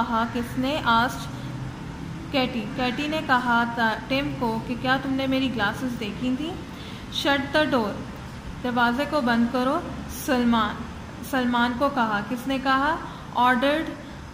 किसने? आस्क्ड कैटी ने कहा टिम को कि क्या तुमने मेरी ग्लासेस देखी थी। शट द डोर, दरवाजे को बंद करो। सलमान को कहा। किसने कहा? ऑर्डर्ड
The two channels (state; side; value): identical; both; correlation 1.00